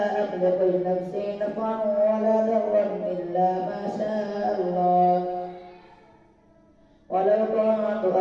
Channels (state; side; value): identical; both; correlation 1.00